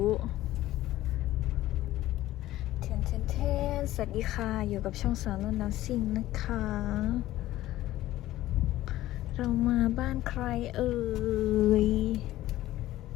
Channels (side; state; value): right; quieter; 15.3 dB